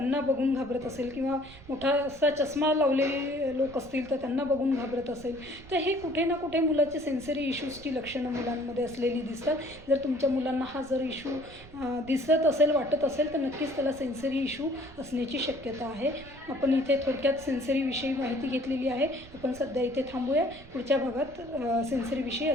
बघून घाबरत असेल किंवा मोठा असा चष्मा लावलेले लोक असतील तर त्यांना बघून घाबरत असेल. तर हे कुठे ना कुठे मुलाचे सेन्सरी इश्यूजची लक्षणं मुलांमध्ये असलेली दिसतात. जर तुमच्या मुलांना हा जर इश्यू दिसत असेल, वाटत असेल तर नक्कीच त्याला सेन्सरी इश्यू असण्याची शक्यता आहे. आपण इथे थोडक्यात सेन्सरीविषयी माहिती घेतलेली आहे. आपण सध्या इथे थांबूया. पुढच्या भागात सेन्सरीविषयी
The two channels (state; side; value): noise; right; rumble, 20 dB below the sound